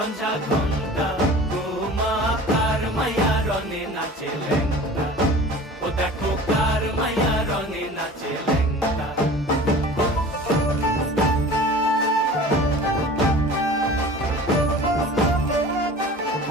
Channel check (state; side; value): normal; both; correlation 0.41